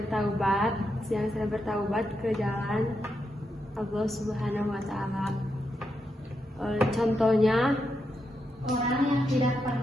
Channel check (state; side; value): normal; both; correlation 0.84